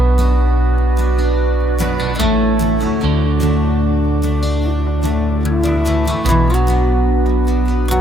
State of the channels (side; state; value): both; normal; correlation 0.75